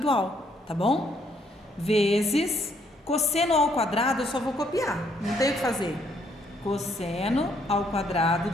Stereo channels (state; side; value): normal; both; correlation 0.70